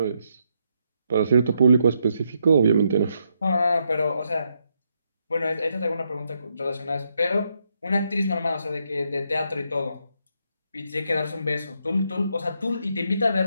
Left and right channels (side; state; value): both; inverted; correlation -0.78